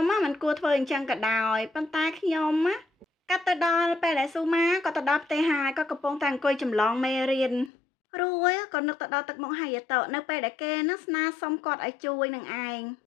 មិនគួរធ្វើអញ្ចឹងក៏ដោយប៉ុន្តែខ្ញុំកាត់ទៅដល់ពេលដែលស៊ូម៉ាក៏ទៅដល់ផ្ទះហើយក៏កំពុងតែអង្គុយចម្លងមេរៀនរួចក៏នឹកទៅដល់ទឹកមុខហើយតនៅពេលដែលគេនឹងស្នើសុំគាត់ឲ្យជួយនឹងឯង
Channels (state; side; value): drops out; right; at 7.7 s